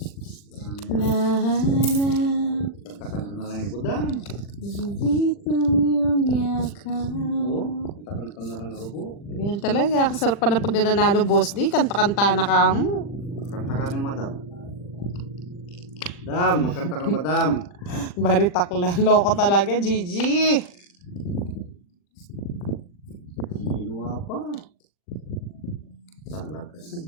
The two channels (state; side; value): late; right; 40 ms